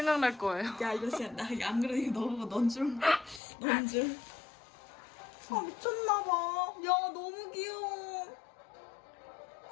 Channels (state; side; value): drops out; right; at 3.4 s